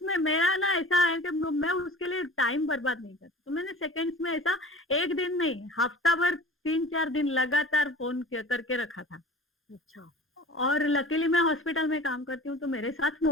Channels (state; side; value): normal; both; correlation 0.40